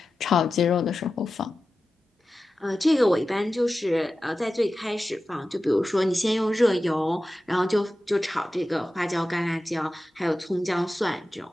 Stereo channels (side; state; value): both; normal; correlation 0.94